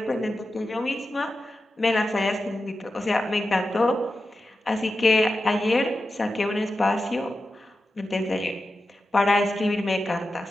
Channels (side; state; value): both; normal; correlation 0.92